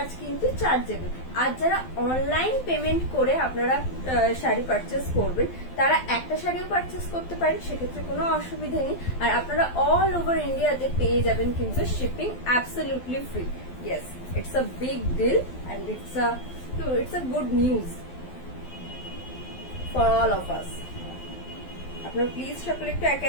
কিন্তু চার্জেবল। আর যারা অনলাইন পেমেন্ট করে আপনারা শাড়ি পারচেস করবেন তারা একটা শাড়িও পারচেস করতে পারেন, সেক্ষেত্রে কোনো অসুবিধা নেই। আর আপনারা অল ওভার ইন্ডিয়াতে পেয়ে যাবেন কিন্তু shipping absolutely free. Yes, it's a big deal and it's a good news for all of us. আপনারা প্লিজ সকলে একটু একে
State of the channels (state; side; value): late; right; 12 ms